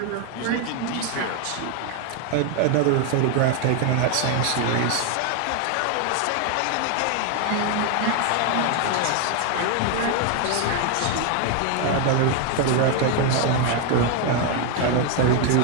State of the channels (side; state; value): both; different; correlation 0.01